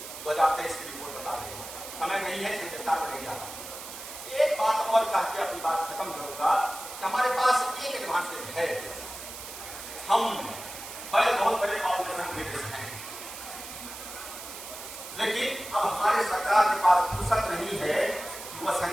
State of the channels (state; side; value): noise; right; hiss, 11 dB below the sound